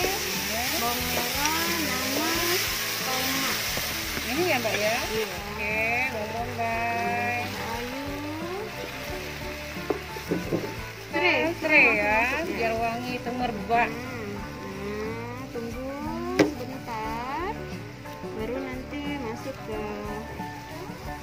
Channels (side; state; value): both; identical; correlation 1.00